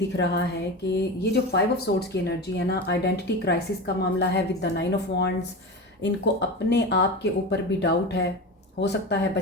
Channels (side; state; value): both; normal; correlation 0.25